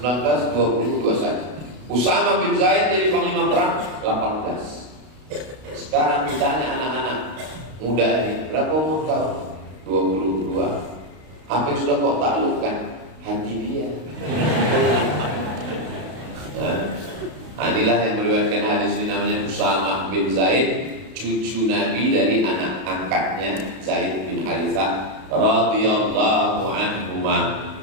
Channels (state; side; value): late; left; 32 ms